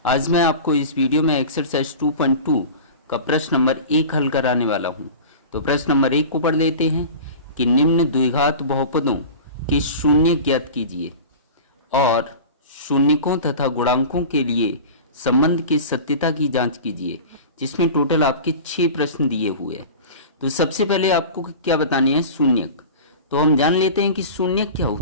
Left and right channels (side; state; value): both; inverted; correlation -0.34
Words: आज मैं आपको इस वीडियो में एक्सरसाइज 2.2 का प्रश्न नंबर 1 हल कराने वाला हूं। तो प्रश्न नंबर 1 को पढ़ लेते हैं कि निम्न द्विघात बहुपदों के शून्य ज्ञात कीजिए और शून्यकों तथा गुणांकों के लिए संबंध की सत्यता की जांच कीजिए, जिसमें टोटल आपके 6 प्रश्न दिए हुए हैं। तो सबसे पहले आपको क्या बताने हैं? शून्यक। तो हम जान लेते हैं कि शून्यक क्या